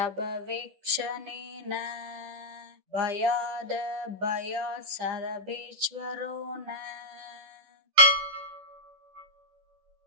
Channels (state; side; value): late; left; 10 ms